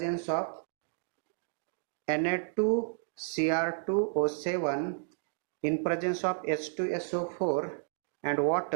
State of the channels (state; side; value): silent; left; digital silence